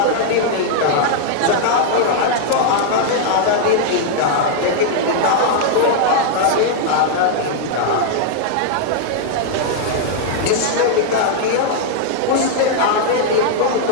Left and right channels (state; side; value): different; both; correlation -0.01